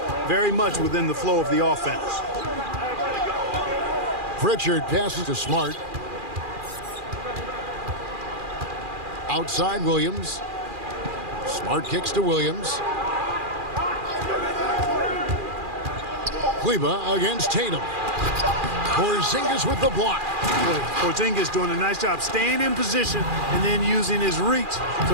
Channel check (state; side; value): late; left; 2.4 ms